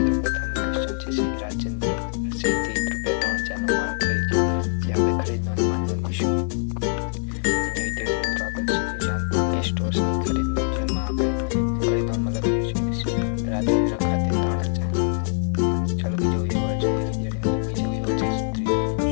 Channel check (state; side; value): silent; right; digital silence